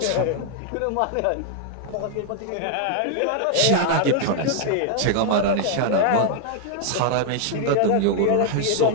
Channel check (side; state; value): both; different; correlation 0.00